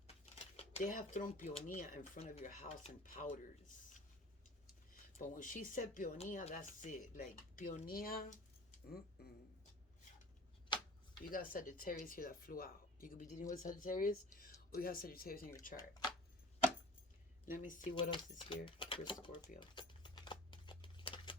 They have thrown peonia in front of your house and powders. But when she said peonia, that's it. Like peonia, mm-mm. You got Sagittarius here that flew out. You could be dealing with Sagittarius, or you have Sagittarius in your chart. Let me see what else is here for Scorpio.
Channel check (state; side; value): normal; both; correlation 0.43